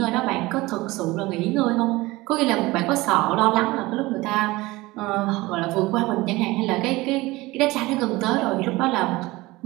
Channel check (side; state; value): left; quieter; 20.5 dB